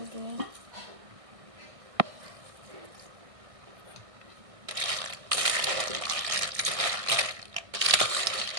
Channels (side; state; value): left; late; 1.6 ms